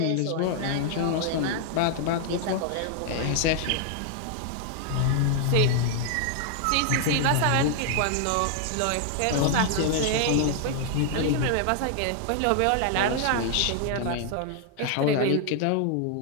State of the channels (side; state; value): both; different; correlation 0.00